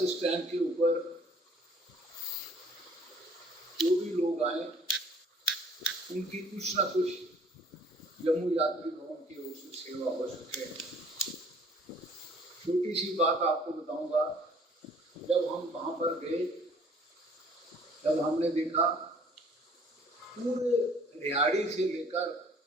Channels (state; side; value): normal; both; correlation 0.56